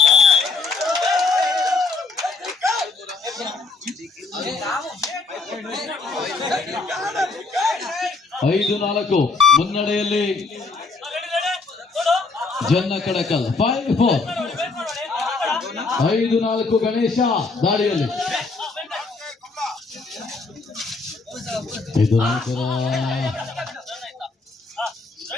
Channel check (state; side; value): quieter; right; 4.0 dB